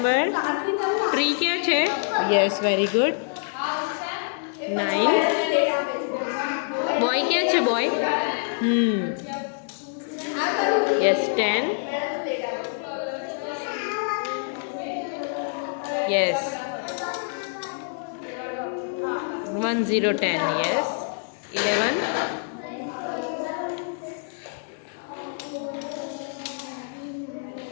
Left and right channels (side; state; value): right; silent; 60 dB below the other